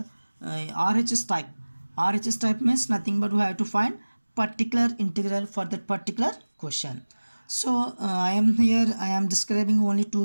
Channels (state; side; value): inverted; both; correlation -1.00